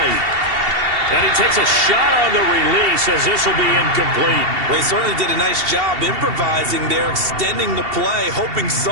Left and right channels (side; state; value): left; late; 2.7 ms